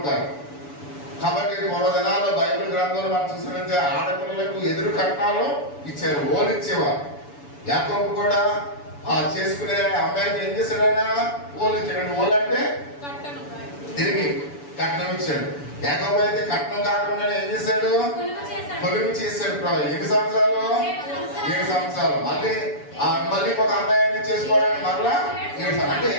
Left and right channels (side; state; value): right; late; 7.0 ms